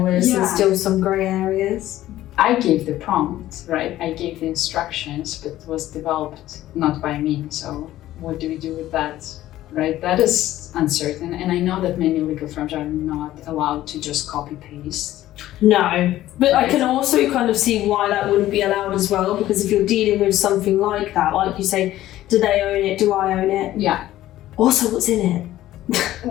where there's still some grey areas. I gave the prompt, right? I gave the instructions, but it was developed not by me. So what do we do with that, right? That is uncertain. And I know that many legal firms are not allowed to just copy paste. No, but I can also kind of see why that wouldn't be allowed as well, because if you're dealing with something like that, like you say, do they own it? Do I own it? Yeah. Also, what's in it?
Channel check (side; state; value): right; quieter; 14.4 dB